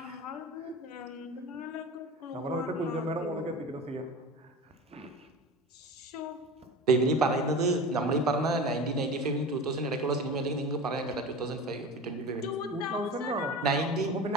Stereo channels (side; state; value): both; normal; correlation 0.33